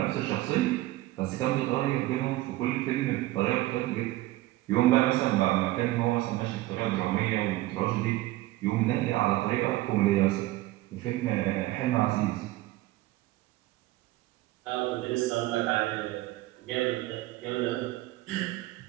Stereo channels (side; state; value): left; quieter; 17.5 dB